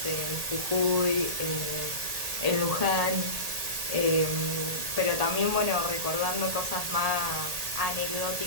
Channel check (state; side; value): late; left; 1.8 ms